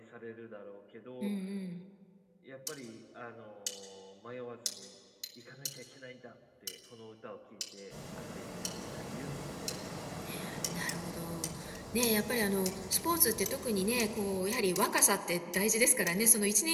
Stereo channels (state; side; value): identical; both; correlation 1.00